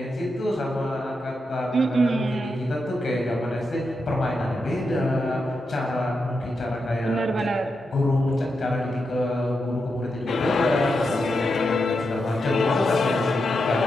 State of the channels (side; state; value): both; normal; correlation 0.86